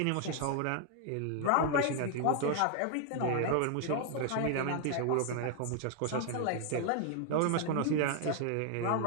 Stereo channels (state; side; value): different; both; correlation 0.00